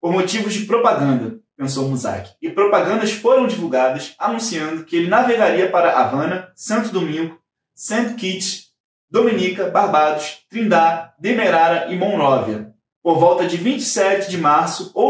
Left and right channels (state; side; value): identical; both; correlation 1.00